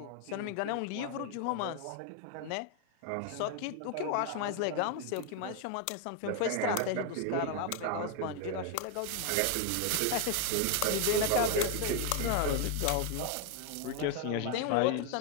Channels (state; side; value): different; both; correlation 0.01